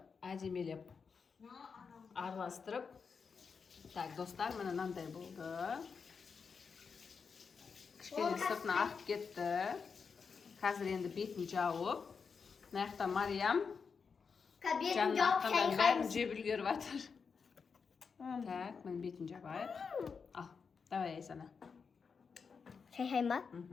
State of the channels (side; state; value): right; quieter; 5.6 dB